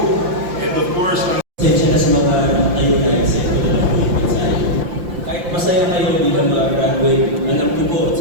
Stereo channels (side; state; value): left; late; 5.8 ms